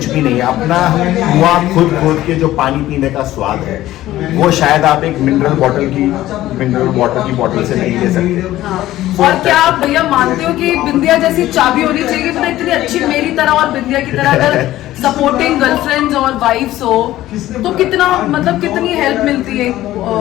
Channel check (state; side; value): quieter; right; 14.9 dB